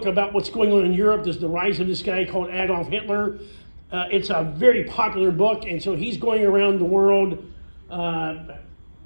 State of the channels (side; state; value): both; inverted; correlation -1.00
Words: about what's going on in Europe. There's the rise of this guy called Adolf Hitler. It's a very popular book, and so he's going around the world